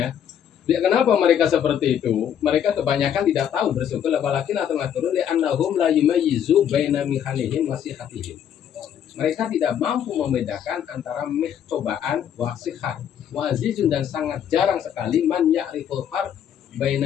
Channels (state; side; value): quieter; right; 9.2 dB